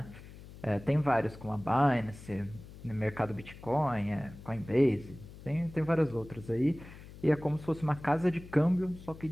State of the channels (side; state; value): left; noise; hum, 17 dB below the sound